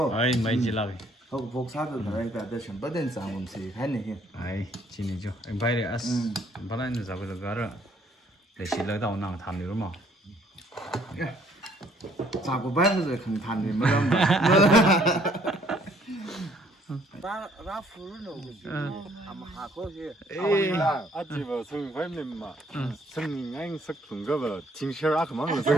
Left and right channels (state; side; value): normal; both; correlation 0.63